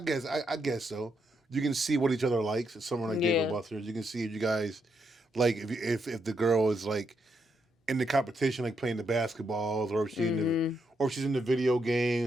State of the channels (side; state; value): both; normal; correlation 0.79